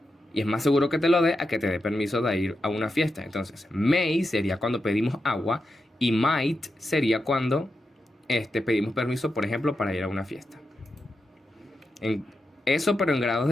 y es más seguro que te lo dé a que te dé permiso de ir a una fiesta. Entonces, may sería cuando pedimos agua y might sería cuando pedimos permiso, por ejemplo, para ir a una fiesta. Eso, pero en grados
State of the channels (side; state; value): both; normal; correlation 0.88